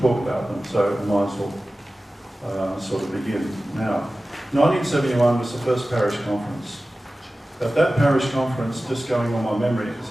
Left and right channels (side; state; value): both; normal; correlation 0.96